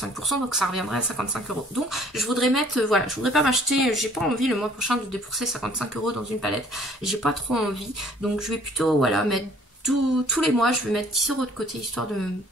donc ça reviendrait à 55 €. Donc je voudrais mettre, voilà, je voudrais pas m'acheter, j'ai pas envie le mois prochain de débourser 55 € dans une palette, j'ai pas trop envie. Donc je vais plutôt, voilà, mettre tous les mois je vais mettre 10 € de côté histoire de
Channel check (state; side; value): normal; both; correlation 0.57